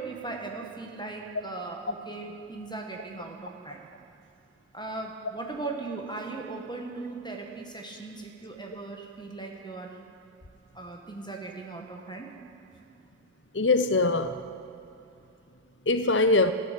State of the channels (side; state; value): both; normal; correlation -0.11